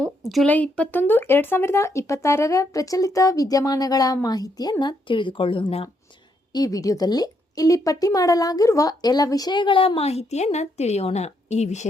ಜುಲೈ 21, 2026ರ ಪ್ರಚಲಿತ ವಿದ್ಯಮಾನಗಳ ಮಾಹಿತಿಯನ್ನು ತಿಳಿದುಕೊಳ್ಳೋಣ. ಈ ವಿಡಿಯೋದಲ್ಲಿ ಇಲ್ಲಿ ಪಟ್ಟಿ ಮಾಡಲಾಗಿರುವ ಎಲ್ಲ ವಿಷಯಗಳ ಮಾಹಿತಿಯನ್ನು ತಿಳಿಯೋಣ. ಈ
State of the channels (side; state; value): both; normal; correlation 0.76